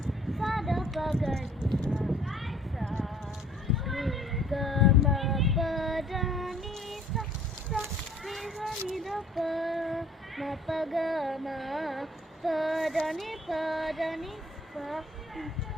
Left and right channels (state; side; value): normal; both; correlation 0.56